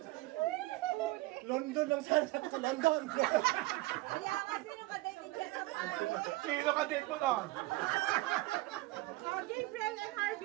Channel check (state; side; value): quieter; left; 20.1 dB